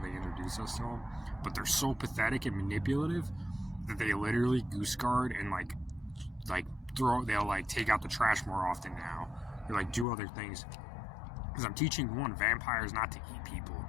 introduce us to them. But they're so pathetic and manipulative that they literally goose guard and like they'll like take out the trash more often now. They like do other things. Because I'm teaching vampires not to eat people.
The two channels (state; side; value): drops out; right; at 10.1 s